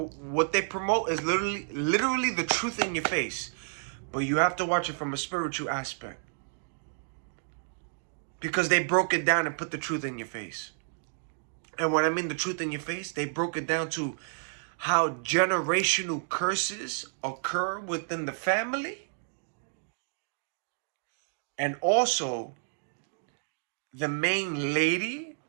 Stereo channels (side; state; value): left; silent; digital silence